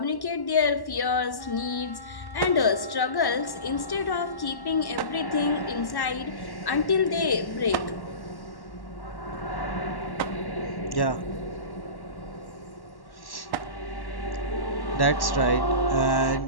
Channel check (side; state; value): right; late; 1.1 ms